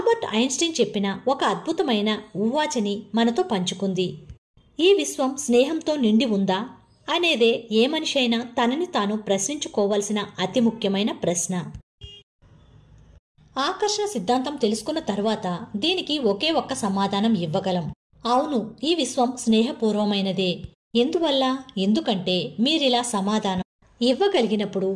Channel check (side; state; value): both; identical; correlation 1.00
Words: ఐన్స్టీన్ చెప్పిన ఒక అద్భుతమైన ఊవాచని మనతో పంచుకుంది. ఈ విశ్వం స్నేహంతో నిండి ఉందా అనేదే ఏ మనిషి అయినా తనని తాను ప్రశ్నించుకోవలసిన అతి ముఖ్యమైన ప్రశ్న. ఆకర్షణ సిద్ధాంతం తెలుసుకున్న తర్వాత దీనికి ఒకే ఒక్క సమాధానం ఇవ్వగలం. అవును, ఈ విశ్వం స్నేహపూర్వమైనదే. ఎందువల్ల? ఎందుకంటే మీరిలా సమాధానం ఇవ్వగలిగినప్పుడు